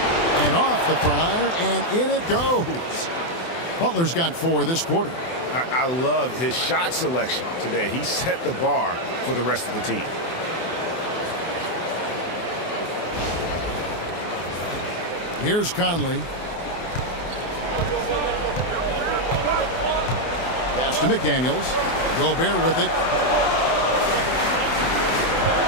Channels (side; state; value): right; late; 24 ms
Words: And off the front iron, and in it goes. Butler's got 4 this quarter. I love his shot selection today. He set the bar for the rest of the team. Here's Conley. Pass to McDaniels. Gobert with it.